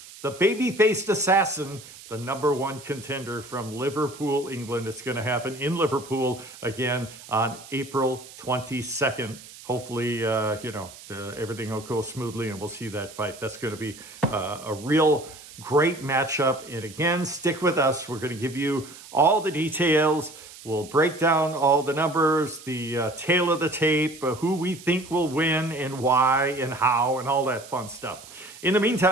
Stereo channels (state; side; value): noise; right; hiss, 18 dB below the sound